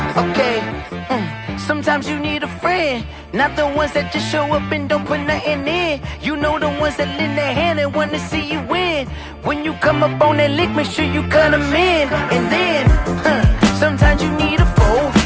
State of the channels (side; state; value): both; identical; correlation 1.00